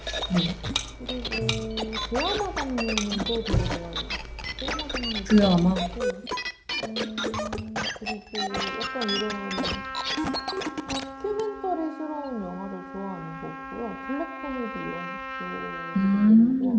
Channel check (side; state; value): both; identical; correlation 1.00